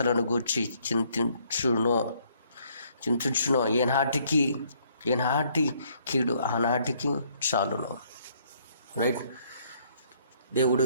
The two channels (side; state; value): both; inverted; correlation -0.66